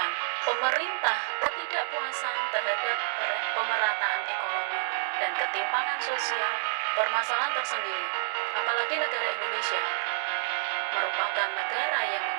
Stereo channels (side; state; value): left; silent; digital silence